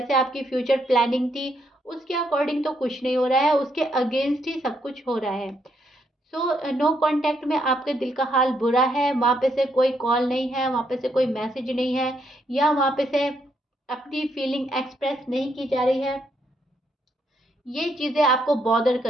आपकी फ्यूचर प्लानिंग थी, उसके अकॉर्डिंग तो कुछ नहीं हो रहा है, उसके अगेंस्ट ही सब कुछ हो रहा है। सो नो कांटेक्ट में आपके दिल का हाल बुरा है। वहाँ पे से कोई कॉल नहीं है, वहाँ पे से कोई मैसेज नहीं है, या वहाँ पे से अपनी फीलिंग एक्सप्रेस नहीं की जा रही है। ये चीज़ें आपको बॉदर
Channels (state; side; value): normal; both; correlation 0.75